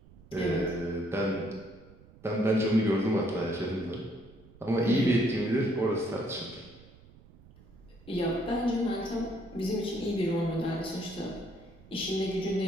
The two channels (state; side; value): noise; right; rumble, 23 dB below the sound